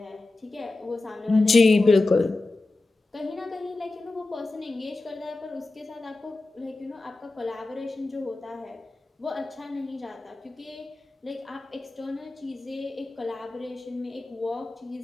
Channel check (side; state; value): right; quieter; 3.2 dB